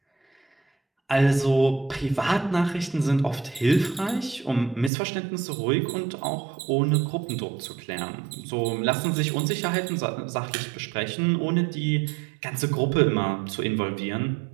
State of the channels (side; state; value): left; drops out; at 4.9 s